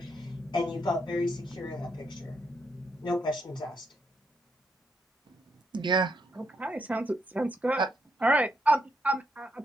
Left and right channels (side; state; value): both; normal; correlation 0.77